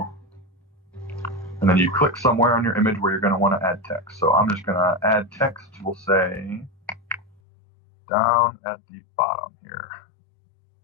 and then you click somewhere on your image where you're going to want to add text. So I'm just going to add text. We'll say down at the bottom here.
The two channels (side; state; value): right; drops out; at 7.4 s